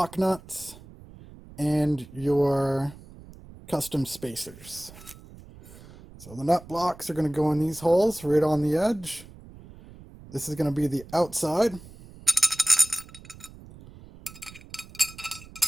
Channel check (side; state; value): right; noise; rumble, 19 dB below the sound